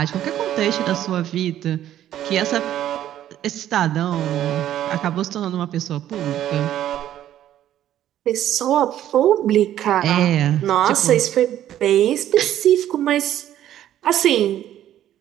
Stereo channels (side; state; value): left; quieter; 11.9 dB